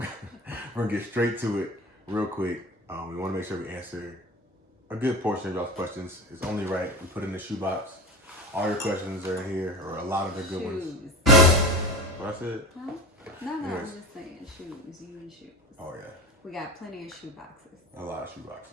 we're gonna get straight to it real quick. We want to make sure we answer a good portion of y'all's questions. It's only right we put in the shoebox. All your questions are in here, or a lot of the good ones. What I said? Huh? No, I'm Anyways. just saying shoes. You need shoes. Oh yeah. We got plenty of shoe boxes. A lot of shoe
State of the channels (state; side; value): normal; both; correlation 0.29